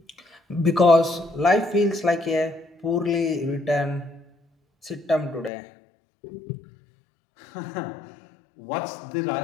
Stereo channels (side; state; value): right; drops out; at 5.5 s